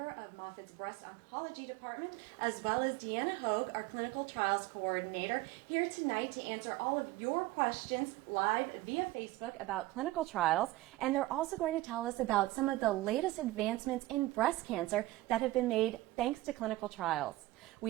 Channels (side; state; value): left; quieter; 17.9 dB